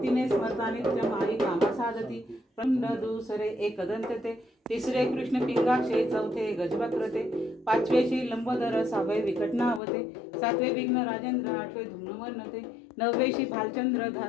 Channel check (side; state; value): right; drops out; at 9.8 s